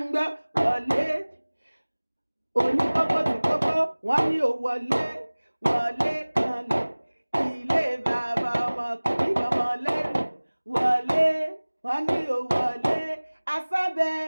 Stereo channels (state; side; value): inverted; both; correlation -1.00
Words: gbọ́ wọlé oníkókó tí kókó wọ́n ní ò wọlé wọlé kanlẹ̀ ilé bàbá ọmọ kìí ọmọ lẹ́rù wọlé wọ́n ní ò wọlé asábẹ́